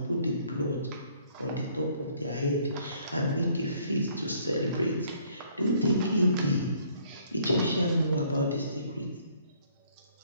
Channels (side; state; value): both; inverted; correlation -0.62